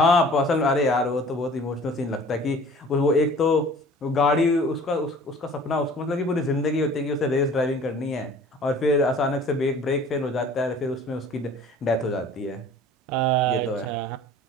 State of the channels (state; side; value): normal; both; correlation 0.48